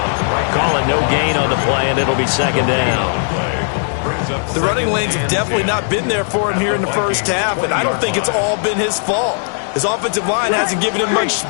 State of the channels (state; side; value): silent; right; digital silence